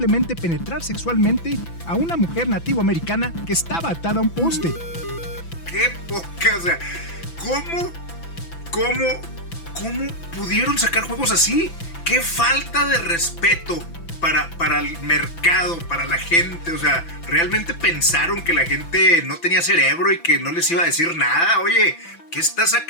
penetrar sexualmente a una mujer nativoamericana que estaba atada a un poste. ¡Qué poca! O sea, ¿cómo pudieron sacar juegos así? ¡Qué falta de respeto para el mercado, para la gente! O sea, ¿realmente pensaron que la gente no tenía cerebro y que no les iba a decir nada? Oye, ¿qué está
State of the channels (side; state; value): right; late; 6.0 ms